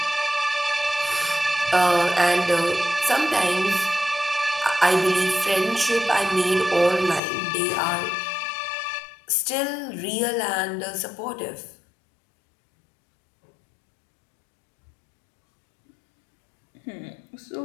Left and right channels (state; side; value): drops out; right; at 7.2 s